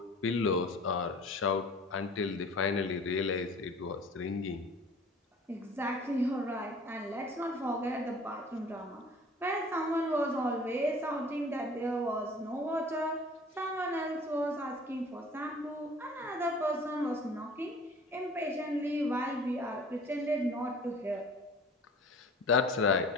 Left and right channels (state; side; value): normal; both; correlation 0.47